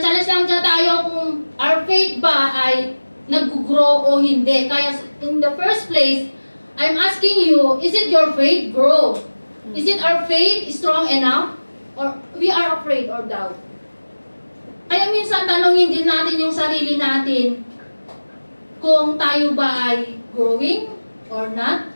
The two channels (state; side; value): inverted; both; correlation -1.00